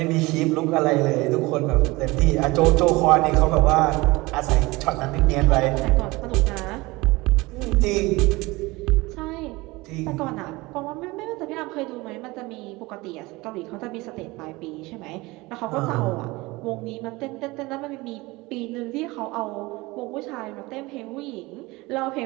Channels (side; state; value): left; quieter; 22.0 dB